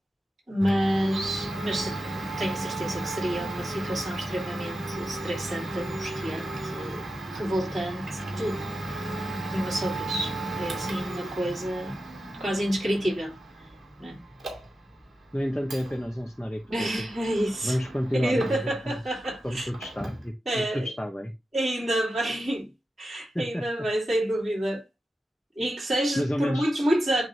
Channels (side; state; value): both; normal; correlation 0.91